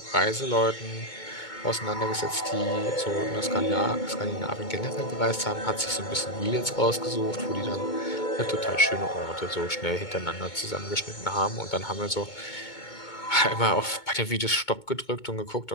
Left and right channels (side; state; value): right; late; 2.2 ms